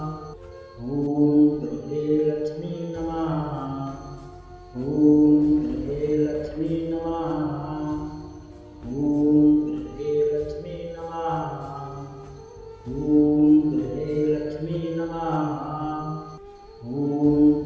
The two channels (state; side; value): identical; both; correlation 1.00